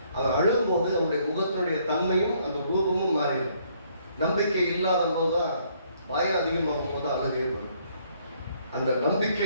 அவன் அழும்போது அவனுடைய முகத்தினுடைய தன்மையும் அந்த ரூபமும் மாறிடும். நம்பிக்கை இல்லாத போதுதான், பயம் அதிகமாகும் போது அழுகே வரும். அந்த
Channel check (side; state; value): both; inverted; correlation -0.67